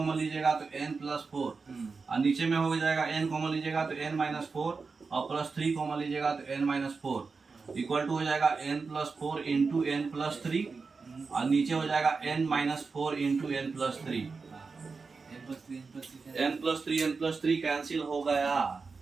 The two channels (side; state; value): left; quieter; 4.6 dB